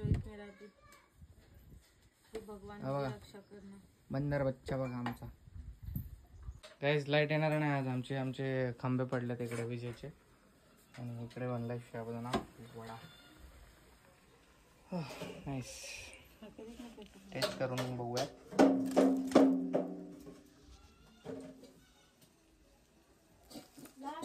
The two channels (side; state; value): both; identical; correlation 1.00